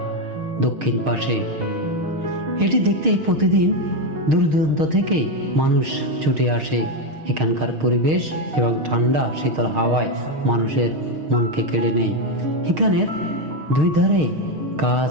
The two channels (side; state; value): left; late; 6.5 ms